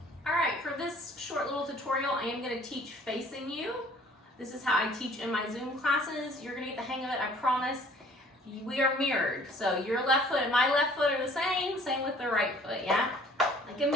All right, for this short little tutorial, I am going to teach facing you. This is how I teach in my Zoom classes. You're going to get the hang of it, I promise. We are mirrored, so your left foot and my left foot are the same with the right foot, yeah? Like a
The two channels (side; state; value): both; normal; correlation 0.54